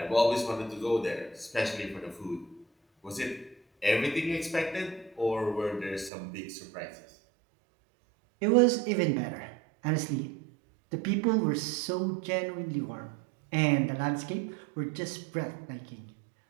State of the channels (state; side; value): drops out; left; at 6.1 s